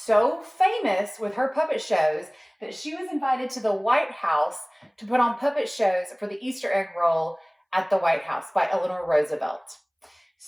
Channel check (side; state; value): both; identical; correlation 1.00